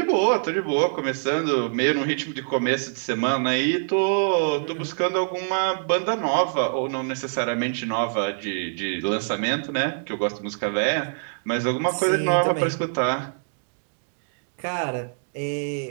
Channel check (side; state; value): left; silent; digital silence